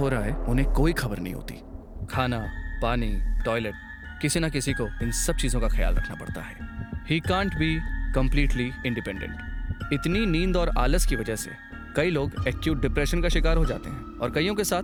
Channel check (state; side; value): identical; both; correlation 1.00